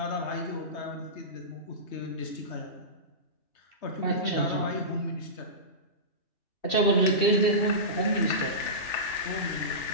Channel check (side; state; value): right; late; 2.6 ms